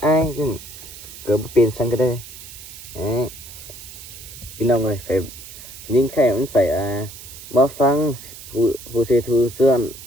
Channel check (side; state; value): right; noise; hiss, 15 dB below the sound